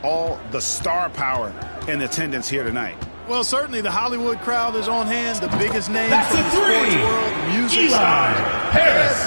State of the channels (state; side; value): inverted; both; correlation -1.00